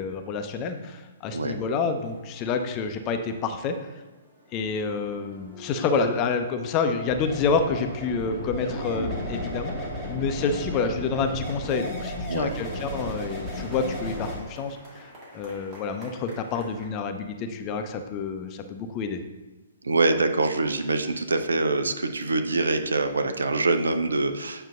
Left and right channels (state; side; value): inverted; both; correlation -0.39